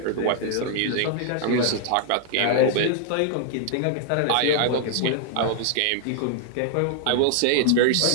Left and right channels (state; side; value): different; both; correlation -0.01